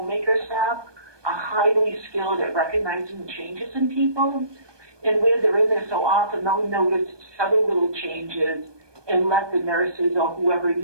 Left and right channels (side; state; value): left; late; 1.2 ms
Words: staff are highly skilled at recognizing changes in people. And where they're in there so often, they'll notice several little changes and let the nurses or whoever